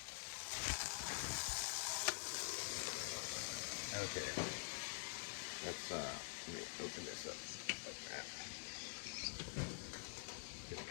Okay, let's let me open this up like that. Just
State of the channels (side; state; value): right; silent; digital silence